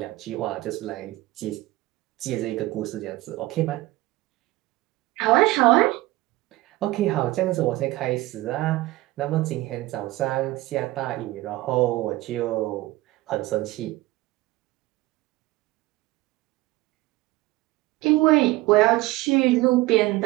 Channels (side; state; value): left; quieter; 19.0 dB